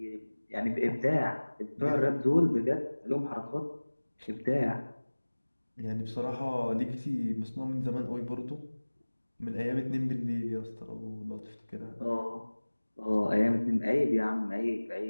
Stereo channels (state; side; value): inverted; both; correlation -1.00